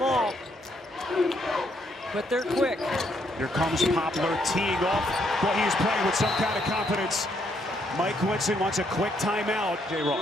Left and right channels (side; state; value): both; normal; correlation 0.73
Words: but they're quick. Here comes Poplar teeing off. Well, he is playing with some kind of confidence. Mike Winston wants a quick timeout. Jay